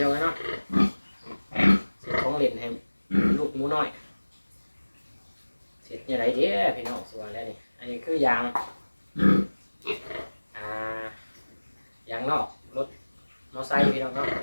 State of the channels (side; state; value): both; inverted; correlation -1.00